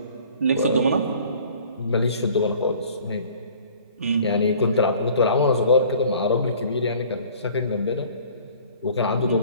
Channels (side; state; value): both; inverted; correlation -0.51